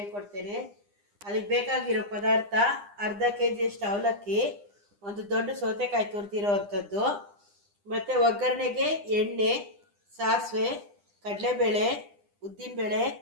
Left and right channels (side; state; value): left; late; 9.9 ms